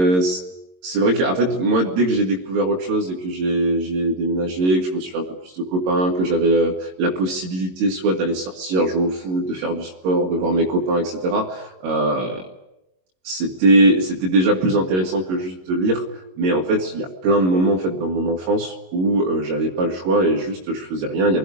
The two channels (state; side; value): late; left; 22 ms